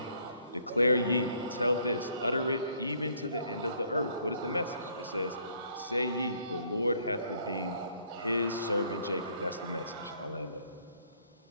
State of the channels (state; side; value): inverted; both; correlation -0.63